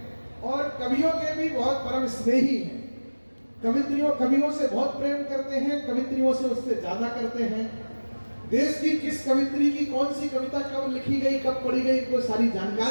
और कवियों के भी बहुत परम स्नेही हैं। कवियों से बहुत प्रेम करते हैं, कवित्रियों से उससे ज्यादा करते हैं। देश की किस कवित्री की कौन सी कविता कब लिखी गई, कब पढ़ी गई, इनको सारी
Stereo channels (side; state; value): both; inverted; correlation -1.00